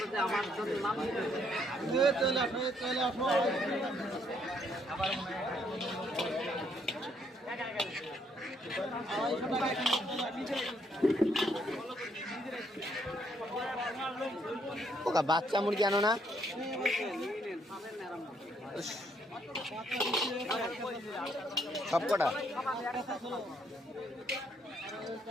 আমার ওকা বাচ্চা মুরগি আনো না সব কটা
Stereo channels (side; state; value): both; normal; correlation 0.70